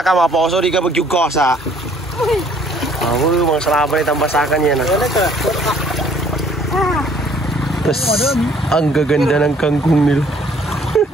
ka mga poso, di ka magyugosa. Ako yung mga salabay tambasakan yan ah. Tapos, ang gaganda ng kangkong nila.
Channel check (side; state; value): both; normal; correlation 0.60